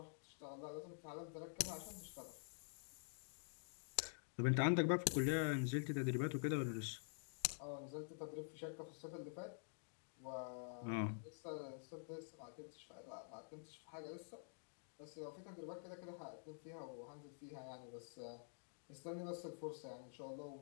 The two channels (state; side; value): silent; right; digital silence